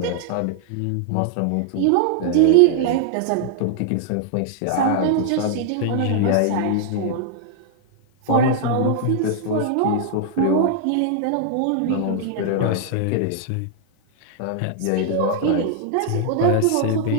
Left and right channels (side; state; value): both; different; correlation -0.01